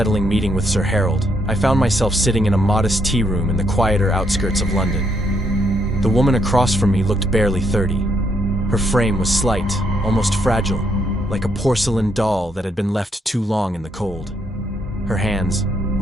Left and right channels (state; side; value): normal; both; correlation 0.75